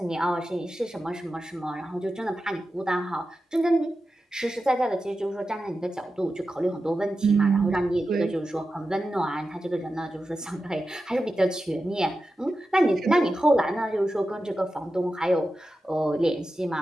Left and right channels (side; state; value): both; normal; correlation 0.92